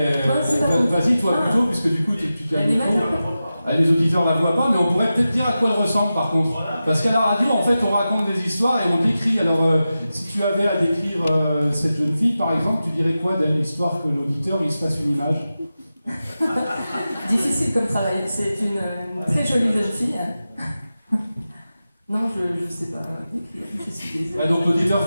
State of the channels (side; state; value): both; inverted; correlation -0.93